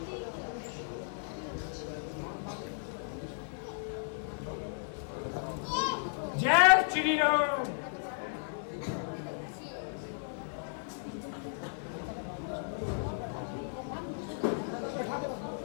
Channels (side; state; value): right; silent; digital silence